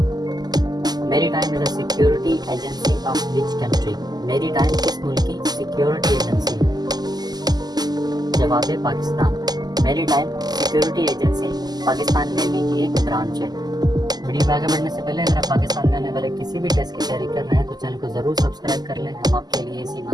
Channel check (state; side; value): late; left; 0.20 ms